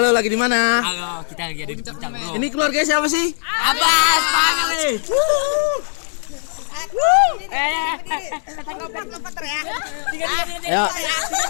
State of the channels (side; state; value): right; silent; digital silence